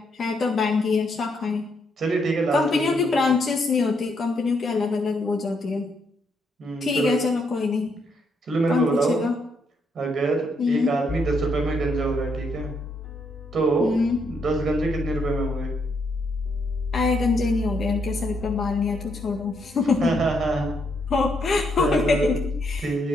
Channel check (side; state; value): both; normal; correlation 0.76